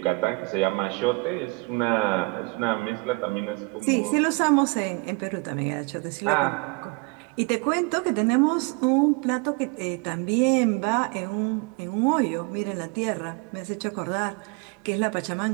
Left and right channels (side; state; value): left; quieter; 29.1 dB